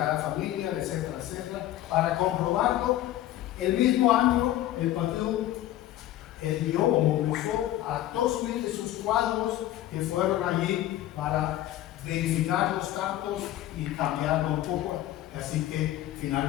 familia, etcétera, etcétera, para comprobarlo, el mismo año el partido envió o movilizó a 2.000 de sus cuadros que fueron allí para verificar los datos y cambiarlo un poco, así que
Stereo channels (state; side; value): quieter; right; 13.8 dB